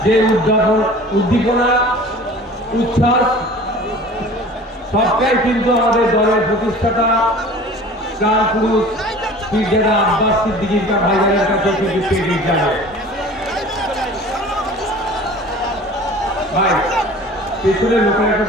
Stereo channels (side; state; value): both; normal; correlation 0.43